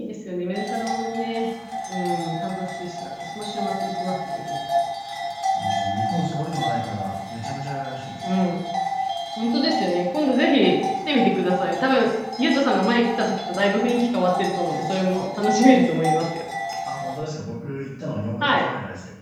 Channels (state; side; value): identical; both; correlation 1.00